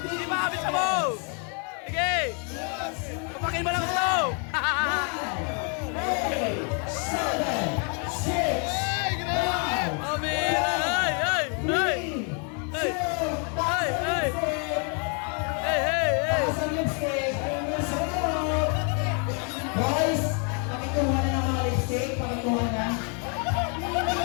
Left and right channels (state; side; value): quieter; right; 39.2 dB